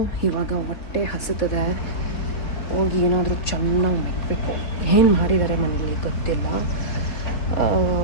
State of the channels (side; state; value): right; late; 4.3 ms